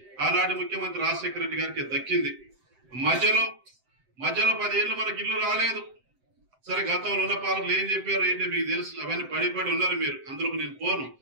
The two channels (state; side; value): late; left; 7.8 ms